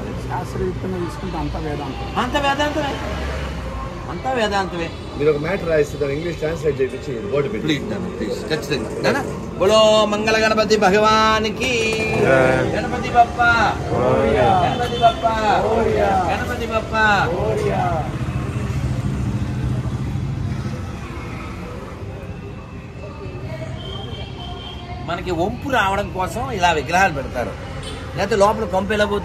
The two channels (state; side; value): identical; both; correlation 1.00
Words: శాస్త్రయుక్తంగా తీసుకుంటే అంతా వేదాంతమే. మీరు ఒక మ్యాటర్ రాయిస్తారు, ఇంగ్లీష్ ట్రాన్స్లేట్ చేయించి బోర్డు పెట్టి ఖచ్చితంగా. బోలో మంగళ గణపతి భగవానికి, గణపతి బప్ప, గణపతి బప్ప, గణపతి బప్ప. మనకి వంపు రావడం కోసం ఇలా విగ్రహాలు పెడతారు. లేకపోతే లోపల కొంప ఎలా